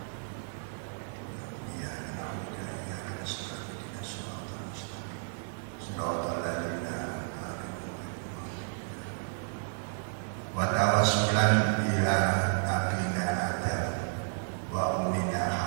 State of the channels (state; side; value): silent; left; 56 dB below the other